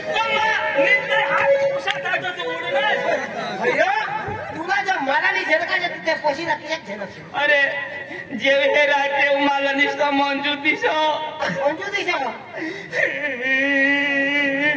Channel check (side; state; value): both; identical; correlation 1.00